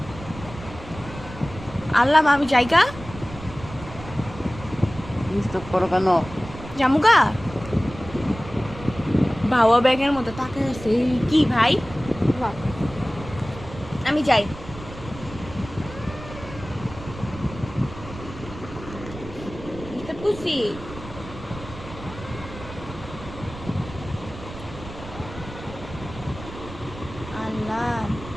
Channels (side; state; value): right; noise; rumble, 14 dB below the sound